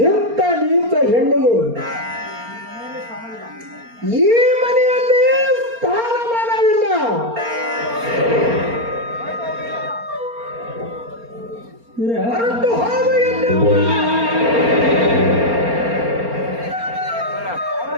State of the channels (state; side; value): late; left; 4.3 ms